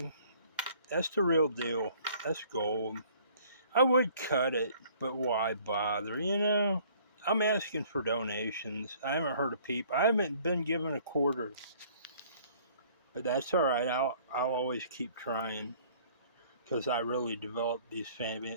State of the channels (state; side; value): inverted; both; correlation -0.56